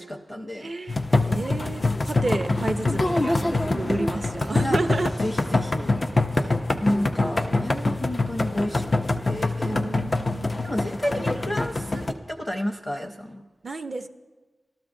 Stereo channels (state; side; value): normal; both; correlation 0.95